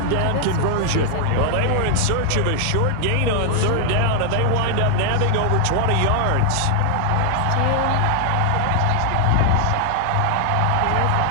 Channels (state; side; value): different; both; correlation 0.00